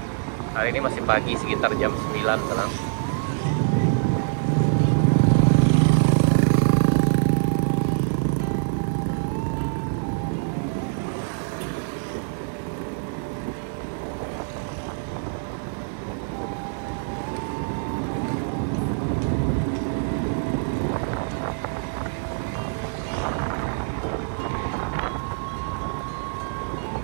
Hari ini masih pagi, sekitar jam 9 sekarang.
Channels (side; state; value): left; silent; digital silence